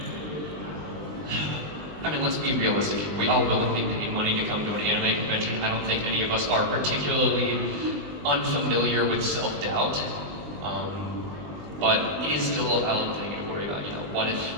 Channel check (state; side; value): late; left; 19 ms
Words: I mean, let's be realistic. We all willingly pay money to come to an anime convention. I don't think any of us are particularly unfamiliar with self-doubt. But it is still a valid thing to worry about. You know,